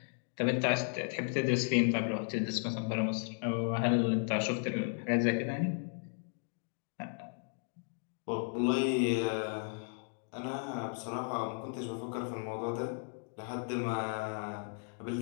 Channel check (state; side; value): silent; right; 54 dB below the other